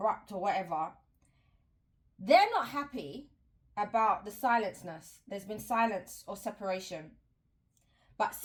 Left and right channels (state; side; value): identical; both; correlation 1.00